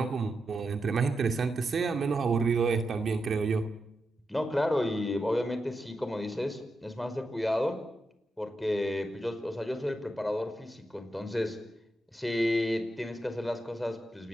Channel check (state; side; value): normal; both; correlation 0.87